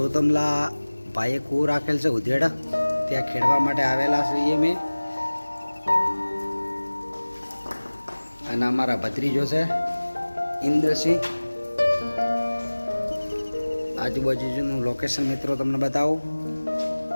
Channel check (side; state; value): both; inverted; correlation -1.00